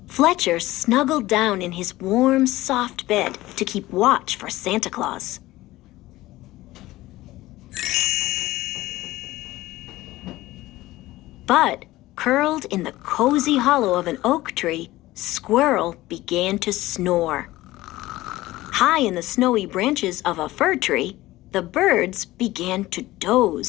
Fletcher snuggled down in his warm, soft bed to keep watch for Santa Claus. But, curled in the cozy hollow of an oak tree, Squirrel began to snore. High in the snowy branches of a fir tree, the birds began to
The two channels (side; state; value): right; quieter; 17.4 dB